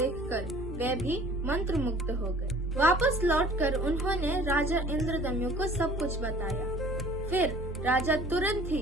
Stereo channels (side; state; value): both; normal; correlation 0.50